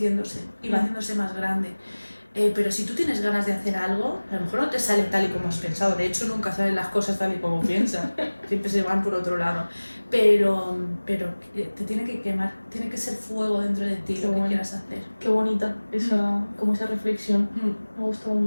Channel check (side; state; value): both; inverted; correlation -1.00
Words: y va haciéndose más grande. Pero si tú tienes ganas de hacer algo, a lo mejor no te sale tal y como has pensado. De hecho, nunca salen las cosas tal y como piensas. Siempre se van por otro lado. Pero te tiene que quemar, tiene que ser fuego dentro de ti lo que quieras hacer. Qué bonita como esa reflexión. Me ha gustado